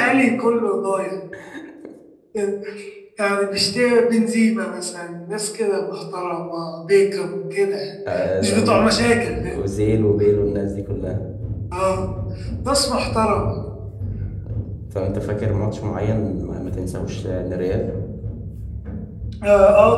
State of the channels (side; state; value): both; identical; correlation 1.00